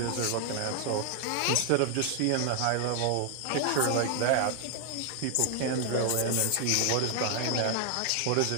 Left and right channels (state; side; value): different; both; correlation 0.00